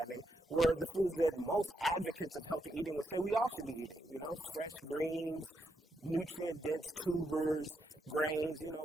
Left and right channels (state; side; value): normal; both; correlation 0.81